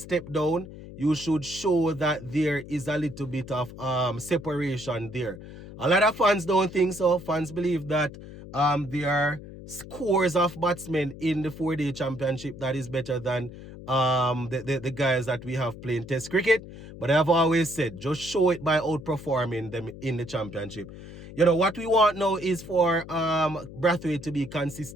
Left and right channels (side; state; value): left; noise; hum, 14 dB below the sound